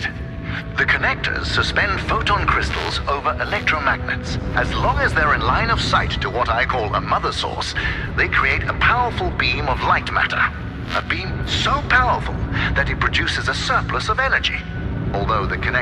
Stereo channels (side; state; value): both; identical; correlation 1.00